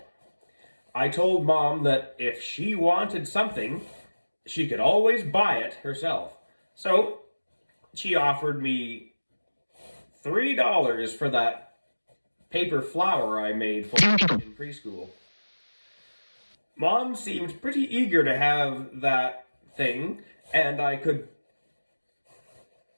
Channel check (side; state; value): both; inverted; correlation -1.00